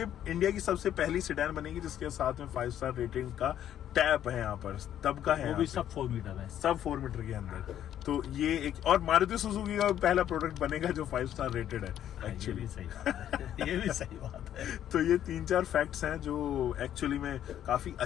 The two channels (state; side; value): quieter; right; 10.9 dB